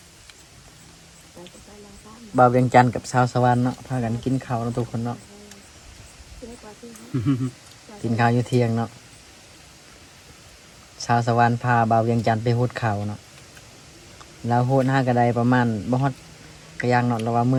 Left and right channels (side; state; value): both; identical; correlation 1.00